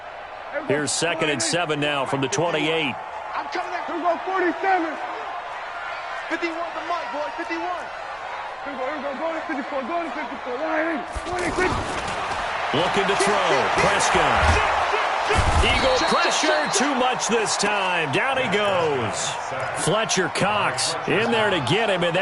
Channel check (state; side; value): identical; both; correlation 1.00